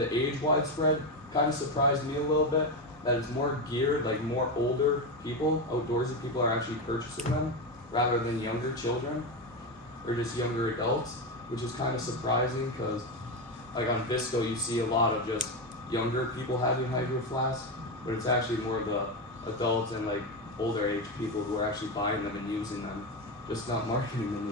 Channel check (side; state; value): both; normal; correlation 0.13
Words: age widespread kind of surprised me a little bit that it's more geared, like more older people, outdoorsy people are actually purchasing them rather than younger children or just younger adults, which is kind of surprising because like on Visco, you see a lot of just younger people having Hydro Flask, but it's actually more of the adults and like older age people who are actually buying them and using them, just not marketing them